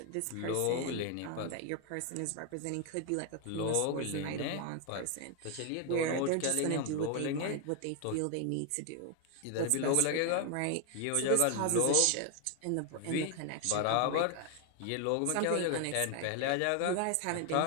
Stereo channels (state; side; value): different; both; correlation 0.00